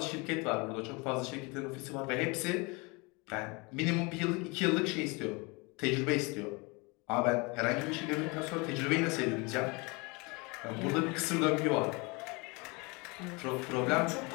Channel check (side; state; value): right; quieter; 27.7 dB